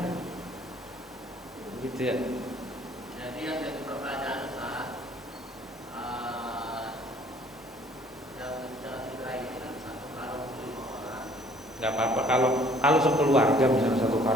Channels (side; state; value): both; normal; correlation 0.57